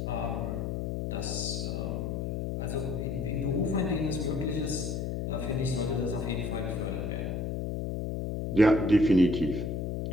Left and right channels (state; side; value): noise; left; hum, 2 dB below the sound